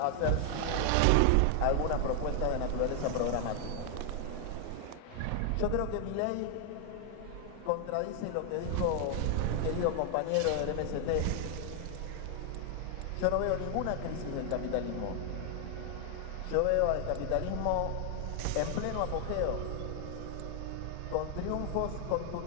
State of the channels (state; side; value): different; both; correlation 0.00